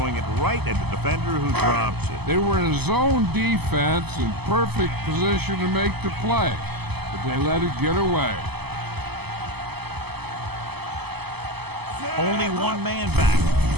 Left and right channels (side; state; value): left; late; 0.98 ms